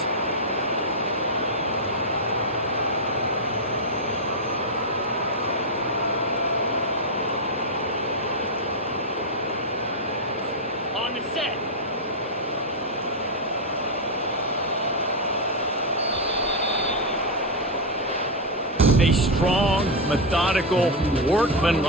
On the set. A strong, methodical,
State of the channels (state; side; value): normal; both; correlation 0.02